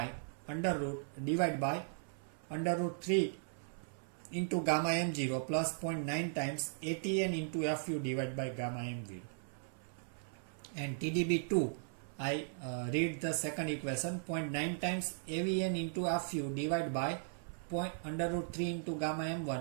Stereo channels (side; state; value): left; silent; 53 dB below the other